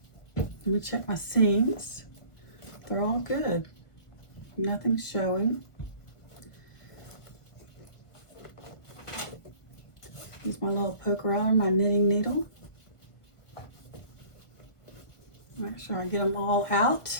let me check my seams. They're all good. Nothing's showing. Use my little poker out of my knitting needle. Make sure I get them all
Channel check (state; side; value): late; right; 1.5 ms